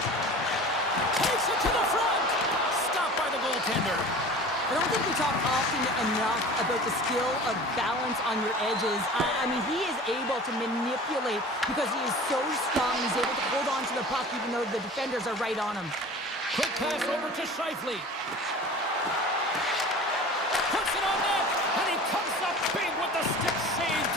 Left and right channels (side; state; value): both; normal; correlation 0.40